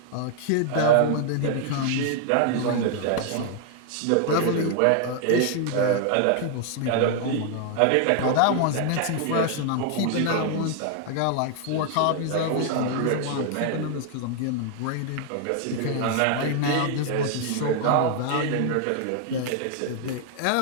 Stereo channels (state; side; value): different; both; correlation 0.00